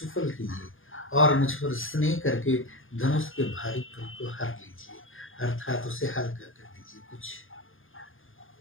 कीजिए और मुझ पर स्नेह करके धनुष के भारीपन को हर लीजिए, अर्थात उसे हल्का कर दीजिए कुछ।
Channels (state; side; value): late; right; 0.59 ms